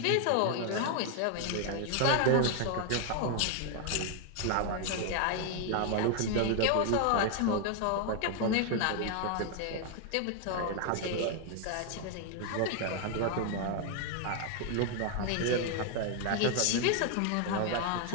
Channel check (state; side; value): different; both; correlation 0.00